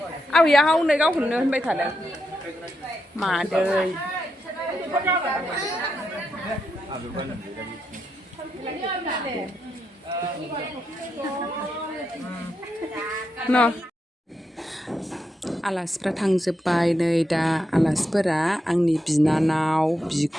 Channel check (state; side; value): normal; both; correlation 0.84